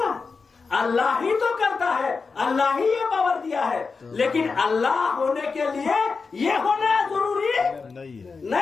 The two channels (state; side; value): quieter; right; 4.7 dB